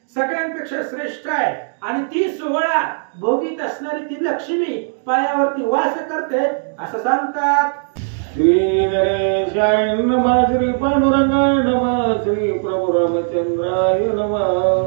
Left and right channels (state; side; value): silent; left; digital silence